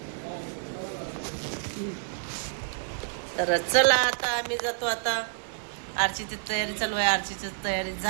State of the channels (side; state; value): left; silent; 59 dB below the other